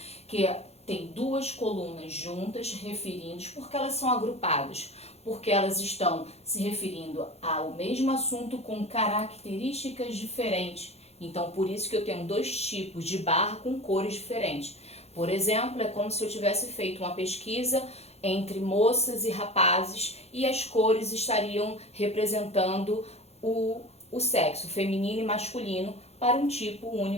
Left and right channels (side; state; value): right; late; 0.30 ms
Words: que tem duas colunas juntas referindo, porque elas são agrupadas, porque elas estão se referindo ao mesmo assunto com características diferentes. Então, por isso que eu tenho dois tipos de barra com cores diferentes. Por exemplo, é como se eu tivesse feito uma pesquisa entre moças e rapazes e as cores estariam representando o sexo feminino e masculino para um tipo